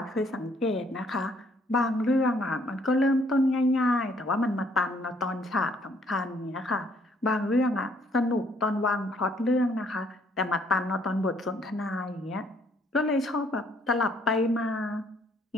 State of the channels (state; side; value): normal; both; correlation 0.65